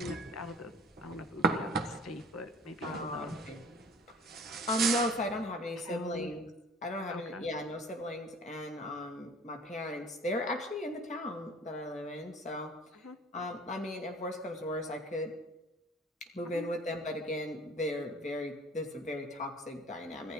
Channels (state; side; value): normal; both; correlation 0.48